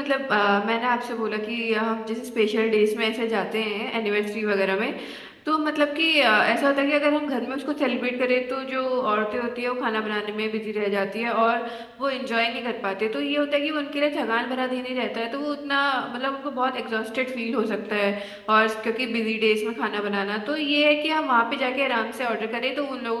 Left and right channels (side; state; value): both; identical; correlation 1.00